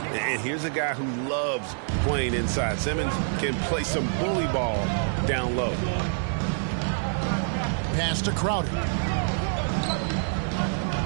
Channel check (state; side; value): silent; left; digital silence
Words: And here's a guy who loves playing inside. Simmons can play some bully ball down low. Pass to Crowder.